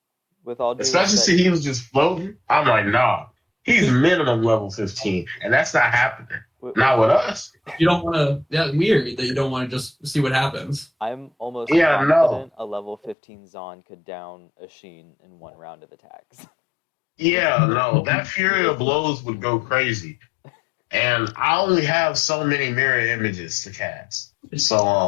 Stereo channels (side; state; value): right; drops out; at 13.2 s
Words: With all due Especially respect, since he was just floating. I'm like, nah, he's minimum level 15, and that's not happening. with- Not with us. You don't want to. That's weird that you don't want to just see what happens. I'm almost Yeah, no. confident a level 15 Zon could down a Sheen in one round of attacks. Yeah, no, that Fury of Blows would go crazy. And I only have so many mirror images to cast.